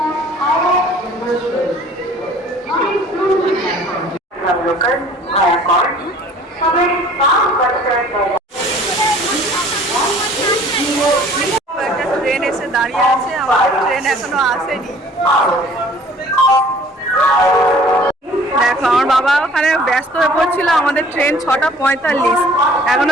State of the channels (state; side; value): normal; both; correlation 0.52